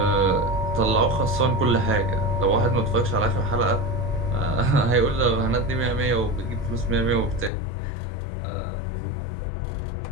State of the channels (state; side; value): drops out; right; at 7.5 s